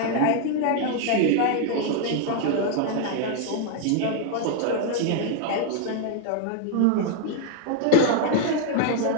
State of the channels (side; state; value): both; different; correlation 0.01